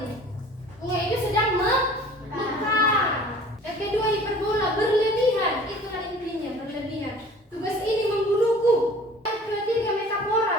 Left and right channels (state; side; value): normal; both; correlation 0.47